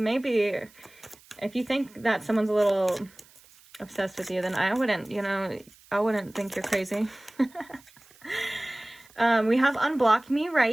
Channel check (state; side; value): noise; right; hiss, 26 dB below the sound